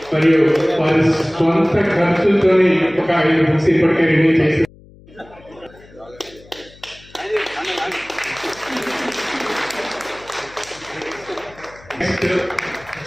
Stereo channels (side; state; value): left; noise; hum, 24 dB below the sound